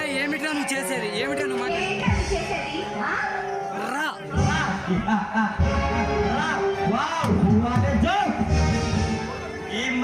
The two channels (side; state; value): both; identical; correlation 1.00